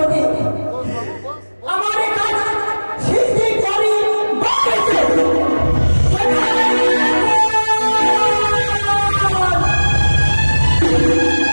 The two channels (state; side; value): inverted; both; correlation -1.00